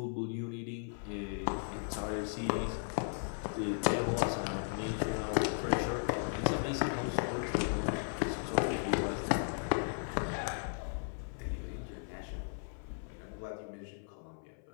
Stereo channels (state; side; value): silent; right; 54 dB below the other